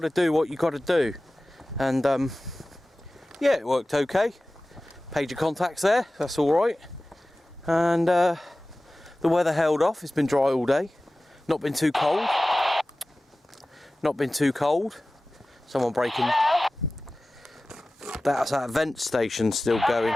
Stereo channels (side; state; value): both; normal; correlation 0.97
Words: do what you got to do. And yeah, it worked okay. Page of contacts there, that's all right. And the weather held off. It's been dry all day. Not been too cold. Not been too cold. Someone breaking. That's that vent station still going.